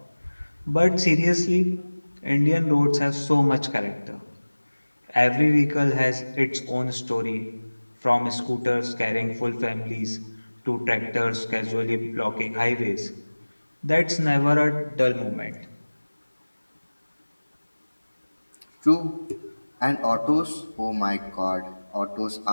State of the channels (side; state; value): both; inverted; correlation -1.00